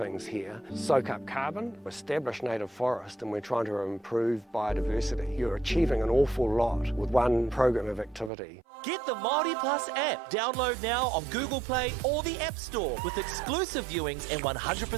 here. Soak up carbon, establish native forest, and we're trying to improve biodiversity. You're achieving an awful lot with one program of activity. Get the Māori Plus app. Download now on Google Play or the App Store with exclusive viewings and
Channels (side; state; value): left; drops out; at 8.3 s